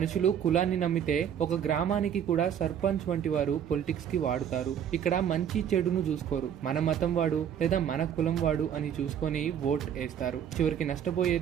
కులాన్ని నమ్మితే ఒక గ్రామానికి కూడా సర్పంచ్ వంటి వారు పొలిటిక్స్ కి వాడుతారు. ఇక్కడ మంచి చెడును చూసుకోరు. మన మతం వాడు లేదా మన కులం వాడు అని చూసుకొని ఓట్ వేస్తారు. చివరికి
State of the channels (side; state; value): left; quieter; 9.0 dB